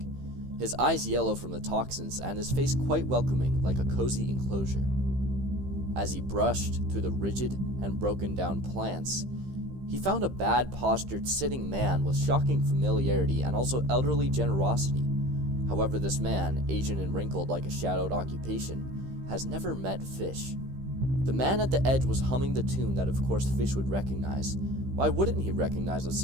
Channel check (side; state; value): left; late; 15 ms